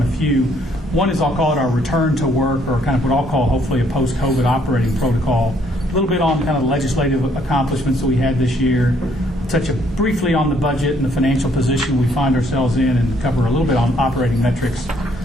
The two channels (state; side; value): normal; both; correlation 0.67